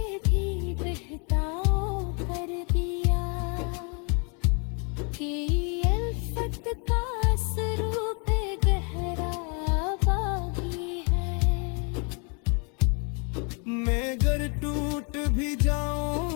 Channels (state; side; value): quieter; right; 35.6 dB